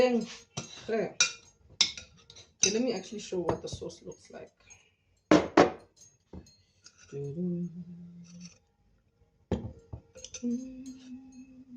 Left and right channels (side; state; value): both; identical; correlation 1.00